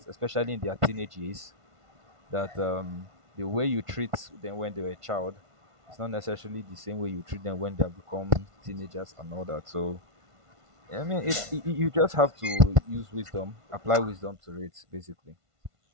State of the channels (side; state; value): left; late; 1.5 ms